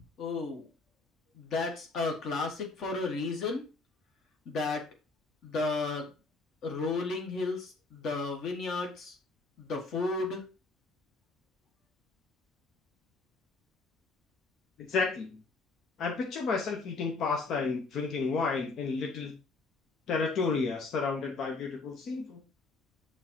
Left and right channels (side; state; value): right; quieter; 3.7 dB